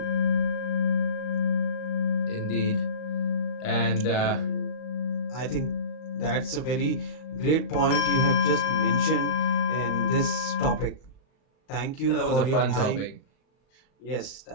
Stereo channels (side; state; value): right; late; 38 ms